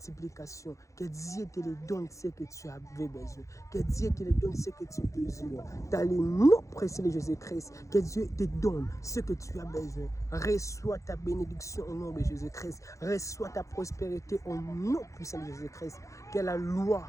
que Dieu te donne ce que tu avais besoin, que Dieu te donne ce que tu désires. Dans le nom précieux de Jésus-Christ, que Dieu te donne ce que tu as besoin. Reçois ta bénédiction au nom de Jésus-Christ. Reçois ta prospérité au nom puissant de Jésus-Christ. Que la loi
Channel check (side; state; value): right; late; 0.15 ms